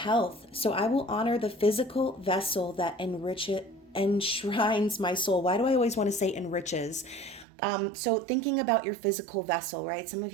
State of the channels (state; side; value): drops out; left; at 7.5 s